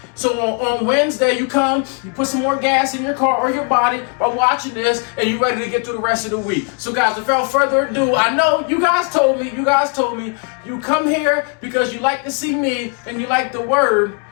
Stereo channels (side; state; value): right; quieter; 37.1 dB